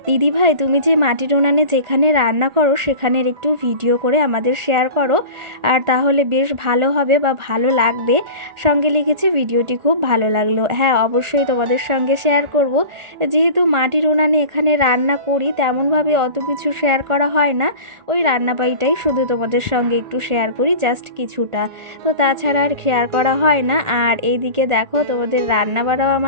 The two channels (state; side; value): late; left; 1.4 ms